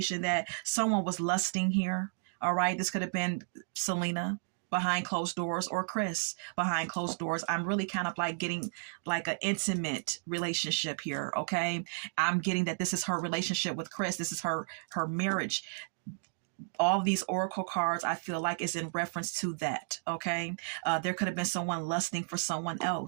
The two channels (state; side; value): silent; left; digital silence